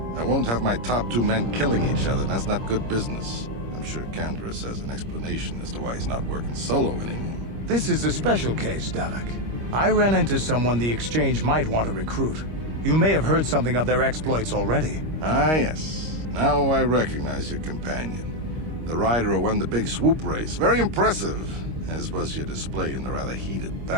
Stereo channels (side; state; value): left; late; 25 ms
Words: I won't have my top 2 men killing each other. That's not good business. I'm sure Canderous has an explanation as to why he's not working solo anymore. This is a special case, Davik. I ran into someone the Exchange might want to recruit. You may have heard something of their exploits already. Ah, yes. Now I recognize your companion. The rider who won the big swoop race. Very impressive, as was your display in the rather heated